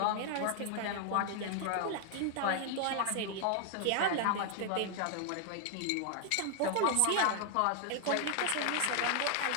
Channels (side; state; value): both; different; correlation 0.00